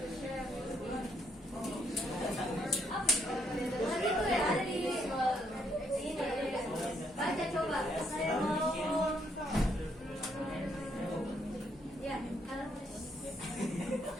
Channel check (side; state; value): both; normal; correlation 0.72